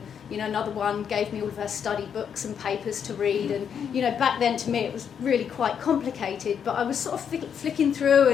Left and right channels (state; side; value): quieter; right; 7.7 dB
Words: another one gave me all of her study books and papers to read. And back then to me it was really quite complicated, but I was sort of flicking through